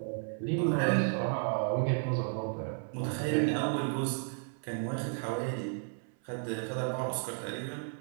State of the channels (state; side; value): silent; left; 56 dB below the other